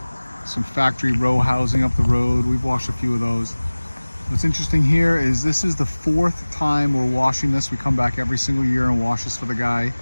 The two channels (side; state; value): both; inverted; correlation -1.00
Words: Some factory row housing up the road. We've washed a few of those. What's interesting here is this is the fourth time we're washing this. We come back every single year and wash this for the guy.